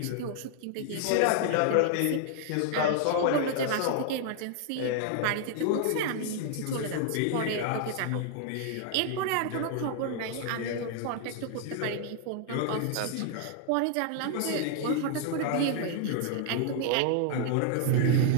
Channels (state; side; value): different; both; correlation 0.00